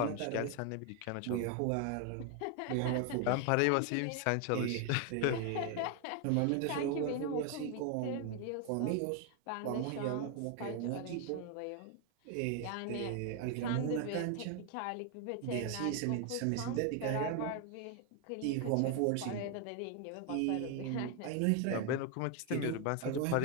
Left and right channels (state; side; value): different; both; correlation 0.01